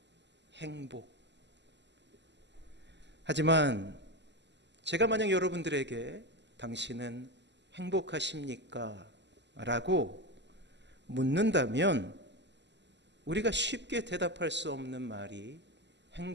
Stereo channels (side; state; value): left; late; 0.51 ms